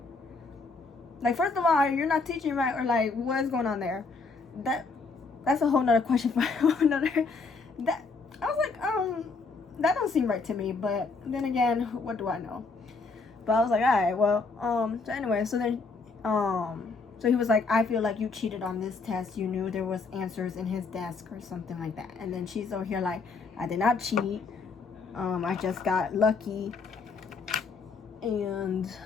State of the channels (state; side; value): quieter; right; 4.2 dB